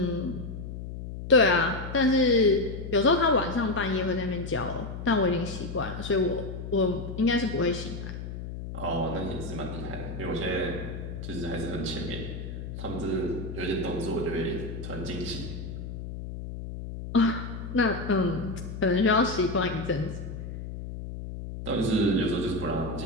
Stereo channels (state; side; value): noise; left; hum, 8 dB below the sound